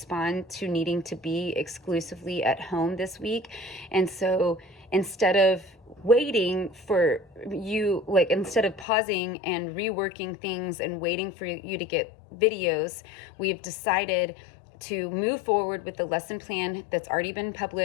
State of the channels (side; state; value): right; drops out; at 8.8 s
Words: to needing to be exclusively at home this week. And so instead of waiting for you, like instead of pausing and reworking things and waiting for you to get videos, we've decided to move forward with the lesson plan that's already been